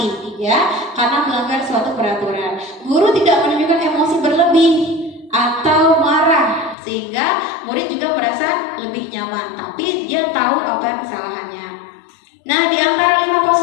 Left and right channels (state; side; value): drops out; right; at 6.8 s